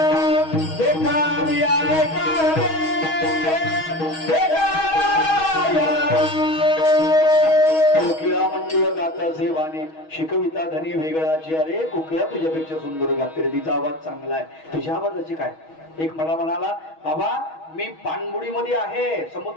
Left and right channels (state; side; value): late; right; 6.3 ms